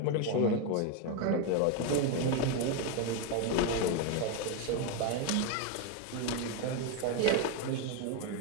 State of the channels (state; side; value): different; both; correlation 0.02